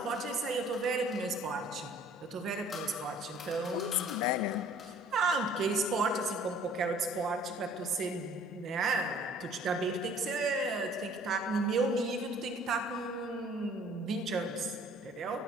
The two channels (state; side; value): normal; both; correlation 0.54